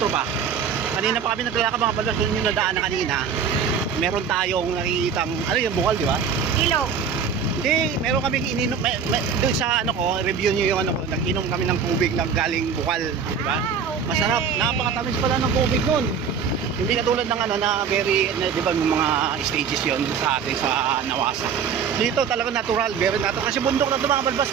ba? Kanina pa kami naglalakad mga balbas. Doon yung nadaan na kanina. Meron tayong nakikitang, ano yung bukal di ba? Ilog. Hindi, meron kaming ininom, doon sa ano ko, review nyo yung ano ko, nag-inom kami ng tubig na galing bukal, di ba? Okay. Masarap, napakatamis pala ng tubig nun. Hindi katulad ng ano na very, di ba yung mga stages yon sa atin sa Nawasa. Dito talaga natural, very natural. Kasi bundok na ito mga balbas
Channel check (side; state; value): left; quieter; 6.6 dB